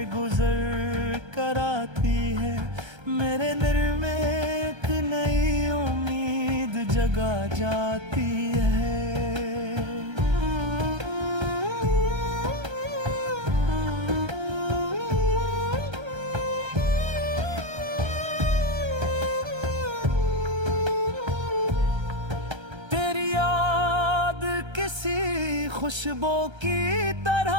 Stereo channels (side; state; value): left; late; 1.3 ms